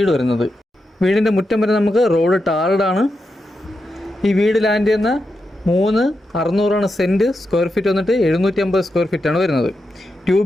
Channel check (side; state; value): both; normal; correlation 0.87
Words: വരുന്നത്. വീടിൻ്റെ മുറ്റം വരെ നമുക്ക് റോഡ് ടാർഡാണ്. ഈ വീട് ലാൻഡ് ചെയ്യുന്ന 3,600 സെൻറ്റ്, സ്ക്വയർ ഫീറ്റ് വന്നിട്ട് 750 സ്ക്വയർ ഫീറ്റാണ് വരുന്നത്. 2